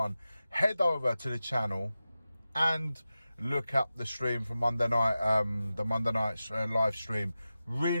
Head over to the channel and look up the stream from Monday night, the Monday night live stream.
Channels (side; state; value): both; inverted; correlation -0.94